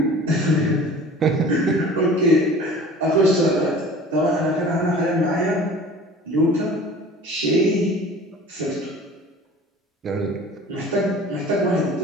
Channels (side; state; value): both; normal; correlation 0.43